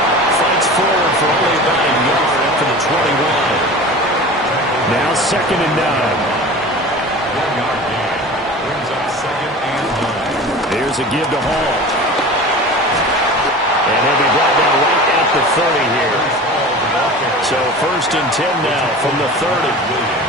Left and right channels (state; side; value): normal; both; correlation 0.36